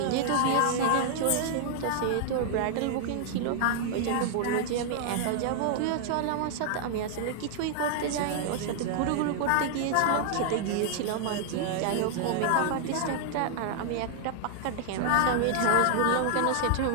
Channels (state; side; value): different; both; correlation -0.01